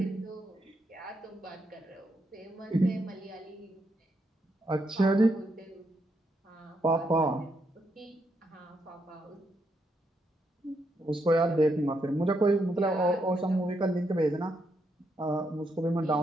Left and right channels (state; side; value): normal; both; correlation 0.79